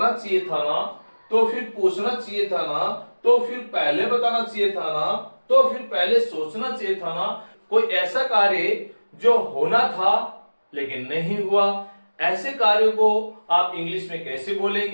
चाहिए था ना, तो फिर पूछना चाहिए था ना, तो फिर पहले बताना चाहिए था ना, तो फिर पहले सोचना चाहिए था ना। कोई ऐसा कार्य जो होना था लेकिन नहीं हुआ, ऐसे कार्यों को आप इंग्लिश में कैसे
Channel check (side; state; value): both; inverted; correlation -1.00